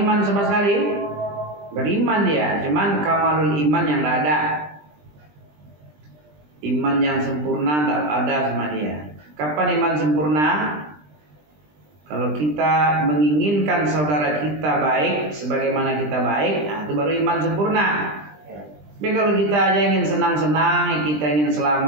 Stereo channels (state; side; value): late; left; 20 ms